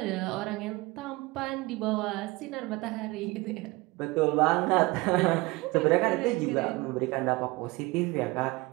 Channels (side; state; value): left; quieter; 22.9 dB